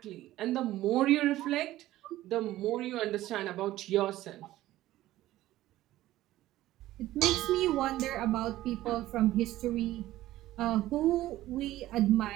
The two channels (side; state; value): left; quieter; 15.3 dB